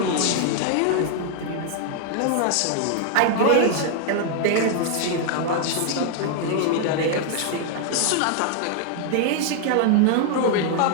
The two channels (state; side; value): different; both; correlation 0.00